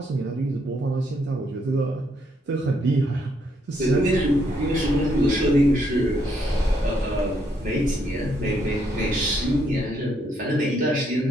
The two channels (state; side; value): normal; both; correlation 0.73